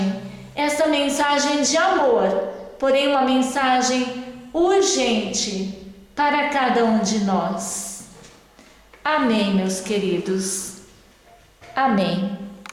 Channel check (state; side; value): identical; both; correlation 1.00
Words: de amor, porém uma mensagem urgente para cada um de nós. Amém, meus queridos. Amém.